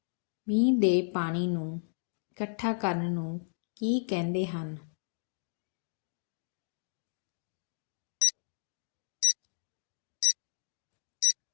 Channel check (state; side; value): silent; right; digital silence